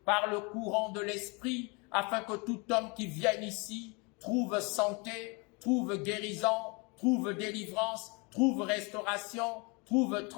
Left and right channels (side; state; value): right; quieter; 30.1 dB